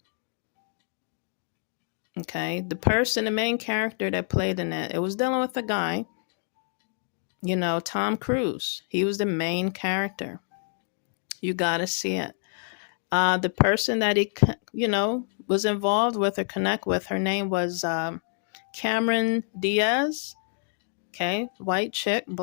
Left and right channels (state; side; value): silent; right; 56 dB below the other